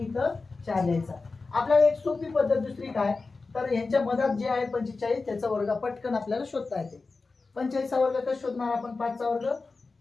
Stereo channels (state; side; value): quieter; right; 4.0 dB